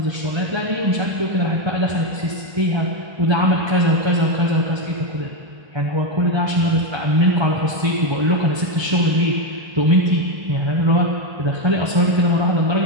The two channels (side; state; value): left; late; 1.3 ms